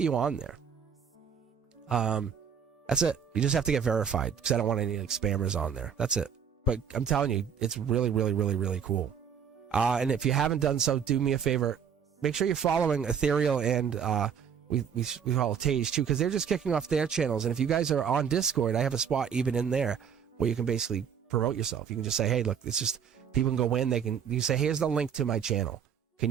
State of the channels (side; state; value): left; quieter; 7.6 dB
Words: on there. That's it. You just have to get verified because I don't want any like spammers on there. That's it. But I'm telling you, it's really, really, really, really cool. And if you haven't done so, do me a favor. Make sure you're following Ethereal and we follow Tage too, because they're just kicking off their channels. And if you guys are on Discord, I have a spot even in there where you can basically promote yourself. You can just say, hey, look, it's just people can go in. You say, here's the link to my channel. Can